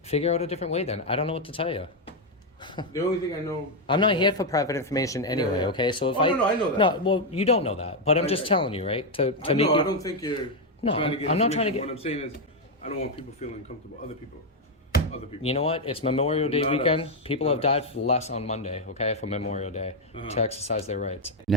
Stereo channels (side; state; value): both; normal; correlation 0.03